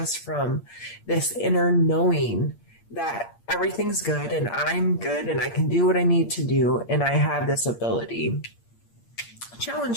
from this inner knowing that everything's good and I'm good and I can do what I need to do and I have this ability.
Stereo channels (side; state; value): right; late; 8.6 ms